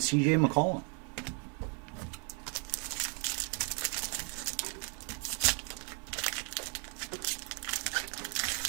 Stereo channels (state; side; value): quieter; left; 38.6 dB